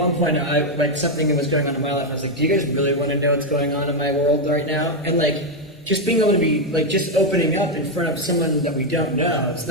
point I like something that was going on in my life. I was like, do you guys really want to know what's going on in my world right now? And like, just being able to be like, just opening up in front of someone that we don't know. It's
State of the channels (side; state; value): both; normal; correlation 0.03